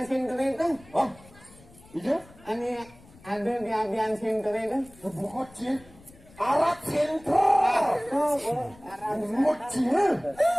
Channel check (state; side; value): noise; left; rumble, 24 dB below the sound